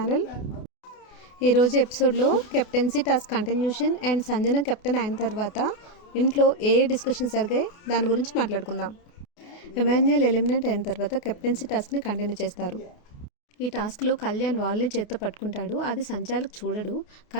ఈరోజు ఎపిసోడ్లో captaincy task continuation and Sanjana captain అయిన తర్వాత ఇంట్లో ఏ డిస్కషన్ జరిగాయి దాని గురించి మాట్లాడుకుందాం. ఎమాన్యుయల్ ఎలిమినేట్ అయిన తర్వాత కెప్టెన్సీ టాస్క్ని కంటిన్యూ చేస్తారు. ఈ టాస్క్లో కళ్యాణ్ వాళ్ళని చేత్తో పట్టుకుంటాడు. అది సంచాలక్ చూడడు,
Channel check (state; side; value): late; right; 28 ms